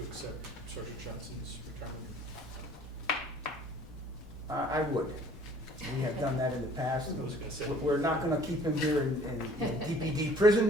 accept Sergeant Johnson's retirement? I would. We have done that in the past. I was gonna say. We're not gonna keep him here in DPD prison,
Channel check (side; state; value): both; normal; correlation 0.53